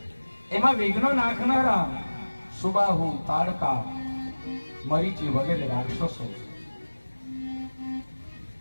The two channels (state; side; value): inverted; both; correlation -1.00